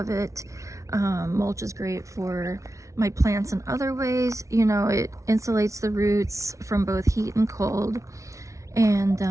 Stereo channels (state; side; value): late; left; 0.15 ms